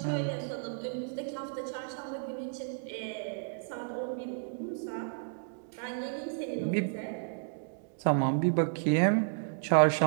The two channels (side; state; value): left; silent; digital silence